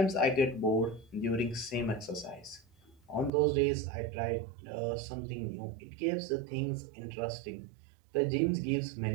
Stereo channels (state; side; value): drops out; left; at 3.3 s